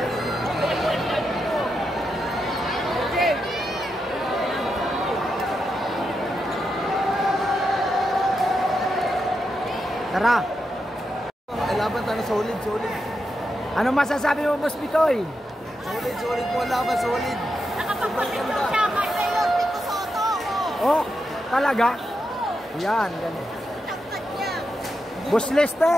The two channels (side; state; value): both; normal; correlation 0.86